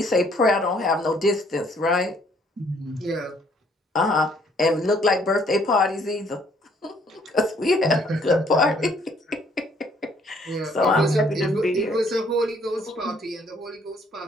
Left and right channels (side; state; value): both; normal; correlation 0.64